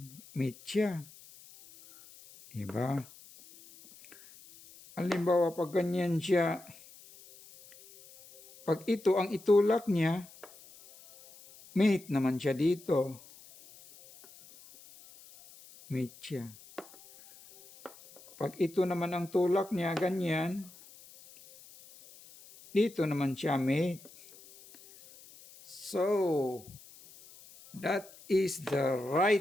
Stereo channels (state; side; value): noise; left; hiss, 22 dB below the sound